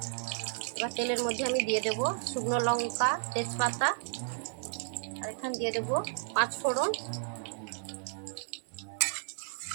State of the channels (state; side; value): silent; left; 56 dB below the other